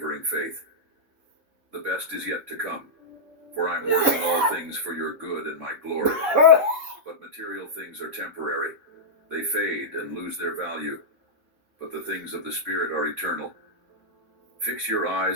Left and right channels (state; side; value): late; left; 3.7 ms